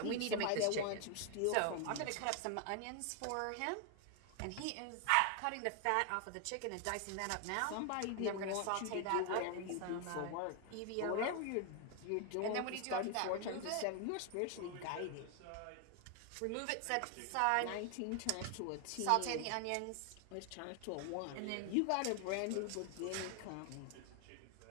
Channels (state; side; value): different; both; correlation 0.00